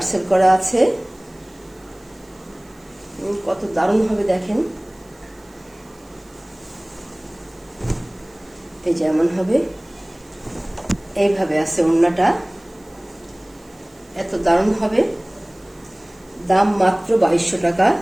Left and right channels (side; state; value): right; noise; hiss, 29 dB below the sound